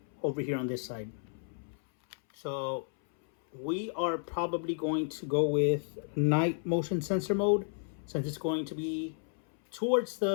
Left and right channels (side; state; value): right; silent; 56 dB below the other